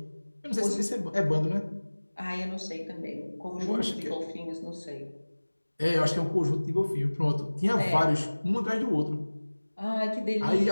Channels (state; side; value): inverted; both; correlation -1.00